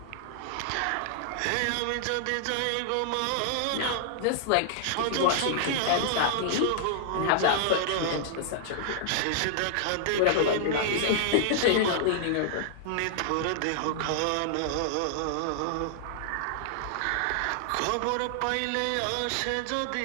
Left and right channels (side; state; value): both; different; correlation -0.01